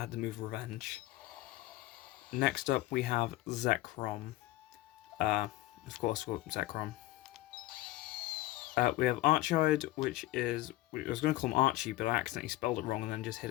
the move Revenge. Next up, we have Zekrom. Of course, Zekrom. We have Archide, which is... I was going to call him Archie, but I accidentally spelled it wrong and then just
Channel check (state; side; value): quieter; right; 17.5 dB